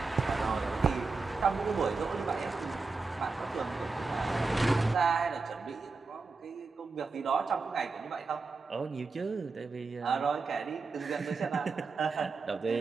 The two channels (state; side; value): quieter; left; 4.2 dB